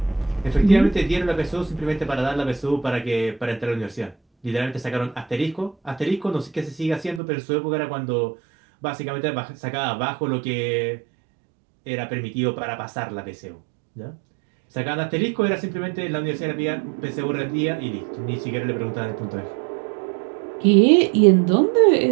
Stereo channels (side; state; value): left; drops out; at 7.2 s